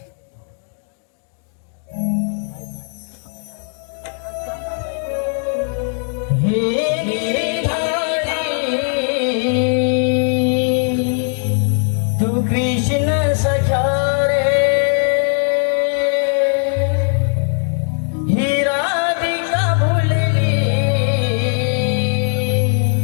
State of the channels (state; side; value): silent; right; 56 dB below the other